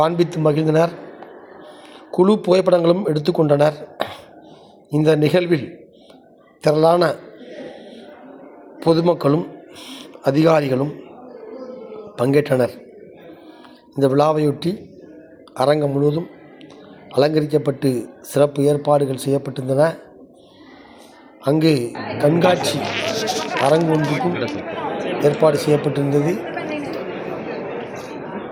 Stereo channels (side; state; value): both; identical; correlation 1.00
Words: மகிழ்ந்தனர். குழு புகைப்படங்களும் எடுத்துக்கொண்டனர். இந்த நிகழ்வில் திரளான பொதுமக்களும் அதிகாரிகளும் பங்கேற்றனர். இந்த விழாவையொட்டி அரங்கம் முழுவதும் அலங்கரிக்கப்பட்டு சிறப்பு ஏற்பாடுகள் செய்யப்பட்டிருந்தன. அங்கு கண்காட்சி அரங்கு ஒன்றுக்கும் ஏற்பாடு செய்யப்பட்டிருந்தது.